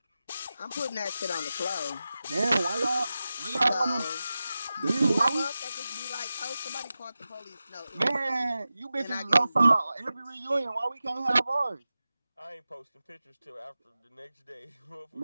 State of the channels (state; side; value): inverted; both; correlation -0.94